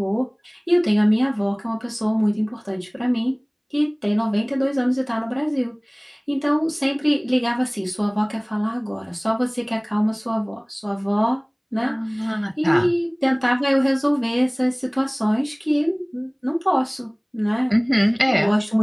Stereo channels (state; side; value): identical; both; correlation 1.00